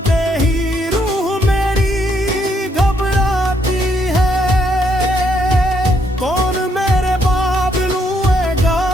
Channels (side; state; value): both; normal; correlation 0.73